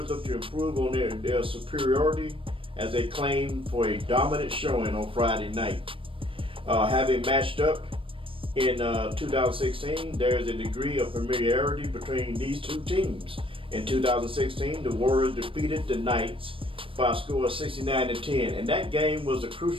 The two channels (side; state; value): left; late; 0.25 ms